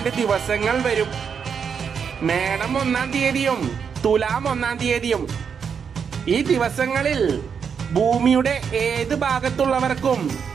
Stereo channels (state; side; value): quieter; left; 6.7 dB